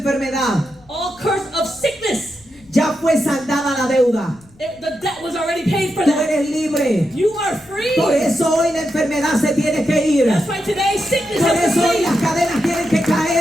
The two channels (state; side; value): noise; left; rumble, 28 dB below the sound